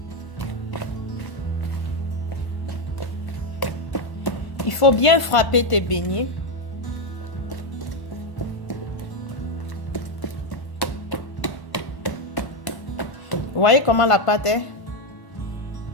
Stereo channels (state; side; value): late; right; 1.5 ms